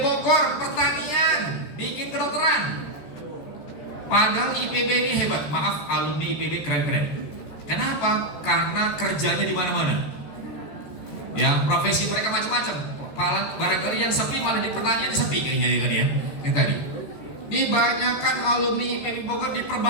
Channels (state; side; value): late; right; 13 ms